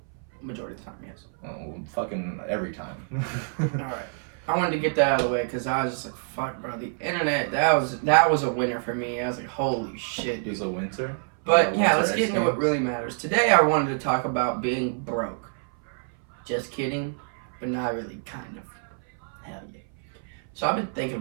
Majority of the time, yes. Oh, fucking every time. Alright. I wanted to get that out of the way because I was just like, fuck, bro. The internet, that was a winner for me. I was like, holy shit. It was a winter? But yeah, let's get into what really matters. Today I wanted to talk about being broke. Just kidding, but not really, kind of. Hell yeah. So I've been thinking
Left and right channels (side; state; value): left; silent; 59 dB below the other